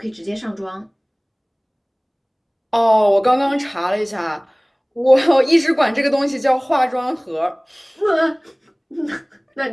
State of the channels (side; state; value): both; identical; correlation 1.00